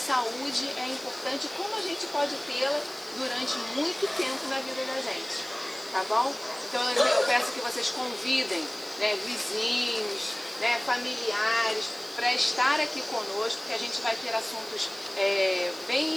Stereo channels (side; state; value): right; noise; hiss, 20 dB below the sound